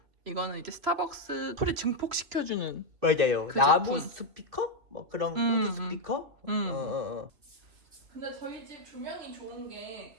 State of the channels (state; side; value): late; left; 2.8 ms